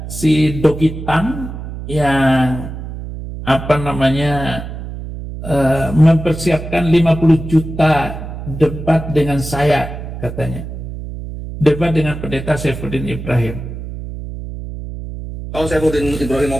si Dogitan yang mempersiapkan 50 juta debat dengan saya, katanya. Debat dengan pendeta Saifuddin Ibrahim. Kalau Saifuddin Ibrahim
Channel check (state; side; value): noise; right; hum, 9 dB below the sound